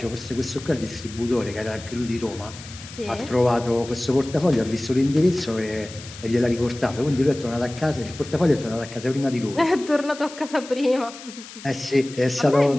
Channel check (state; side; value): noise; left; hiss, 16 dB below the sound